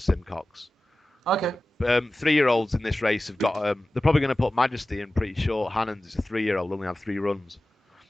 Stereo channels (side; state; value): both; normal; correlation 0.95